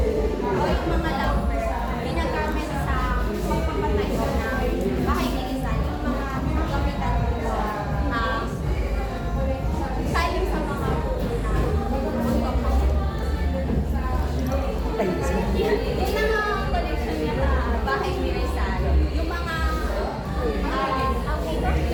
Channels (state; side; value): identical; both; correlation 1.00